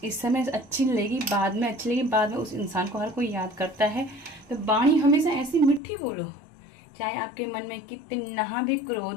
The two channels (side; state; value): right; drops out; at 5.8 s